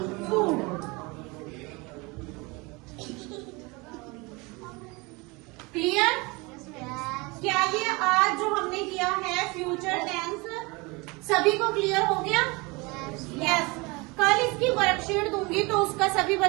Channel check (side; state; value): left; quieter; 26.0 dB